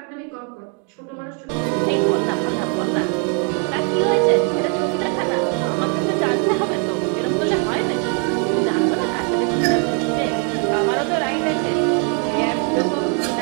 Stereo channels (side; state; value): left; quieter; 39.7 dB